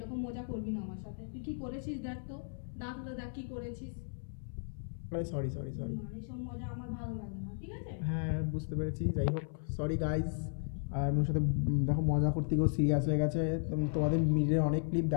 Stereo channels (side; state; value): right; silent; 54 dB below the other